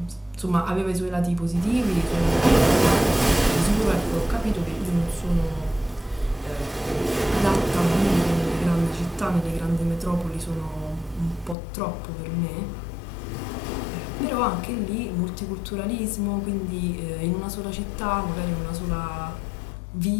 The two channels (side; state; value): right; drops out; at 11.6 s